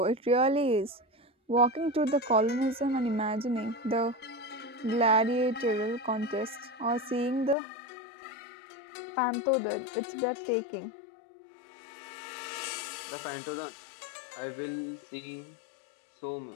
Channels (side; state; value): right; drops out; at 7.6 s